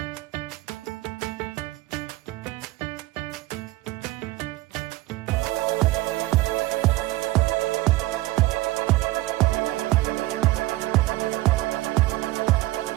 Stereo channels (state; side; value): quieter; left; 18.2 dB